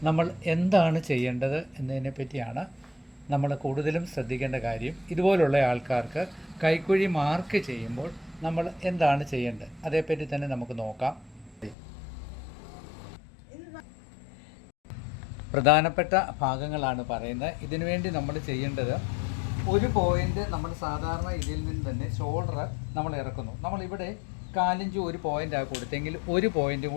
നമ്മൾ എന്താണ് ചെയ്യേണ്ടത് എന്നതിനെ പറ്റിയാണ് നമ്മൾ കൂടുതലും ശ്രദ്ധിക്കേണ്ട കാര്യം. ഇതുപോലുള്ള ആൾക്കാർക്ക് കൈക്കുഴി മാർക്ക് ചെയ്യുമ്പോൾ നമ്മൾ എന്താണ് ചെയ്യേണ്ടത് അതേപ്പറ്റി തന്നെ നമുക്ക് നോക്കാം. പ്രധാനപ്പെട്ട ഭാഗങ്ങളാണ് പറയുന്നത്. ഇതിനുവേണ്ടി നമ്മൾ ചെയ്യേണ്ടത്, ഒരു പോയിൻ്റ് നമ്മൾ സാധാരണ ഇതിൽ നിന്ന് തന്നെ ഷോൾഡർ നമ്മൾ ഇറക്കുന്നു. നമ്മളിവിടെ 4 ഇഞ്ച് ഒരു പോയിൻ്റാണ് കൊടുത്തെങ്കിൽ 1 പോയിൻ്റ്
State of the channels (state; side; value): drops out; right; at 11.8 s